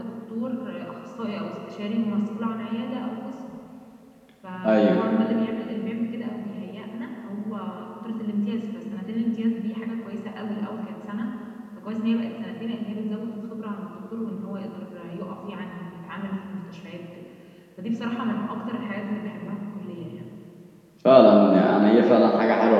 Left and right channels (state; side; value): identical; both; correlation 1.00